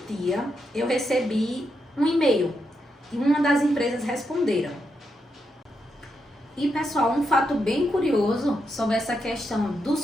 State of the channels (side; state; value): both; normal; correlation 0.83